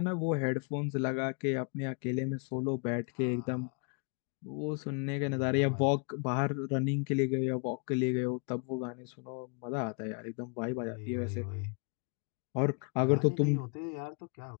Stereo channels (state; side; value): quieter; right; 39.8 dB